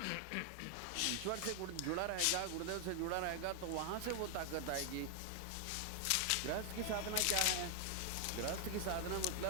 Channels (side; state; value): both; different; correlation 0.00